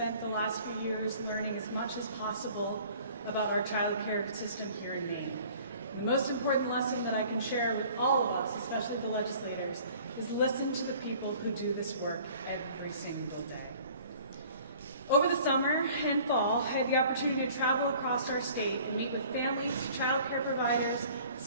the last few years learning as much as possible about our child care system here in Maine. The most important lesson that I can share with all of us, especially the legislators, is listen to the people who do this work every single day. Over the summer and fall, I had the opportunity to travel across our state and meet with families, child care providers,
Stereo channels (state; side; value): inverted; both; correlation -0.51